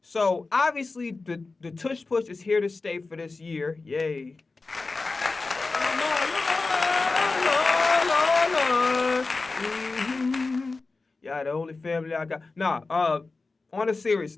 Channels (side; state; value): right; quieter; 3.8 dB